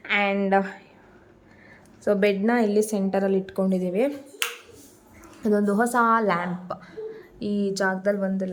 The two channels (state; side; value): identical; both; correlation 1.00